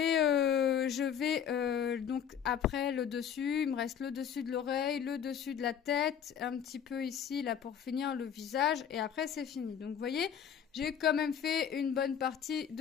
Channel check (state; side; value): quieter; right; 8.4 dB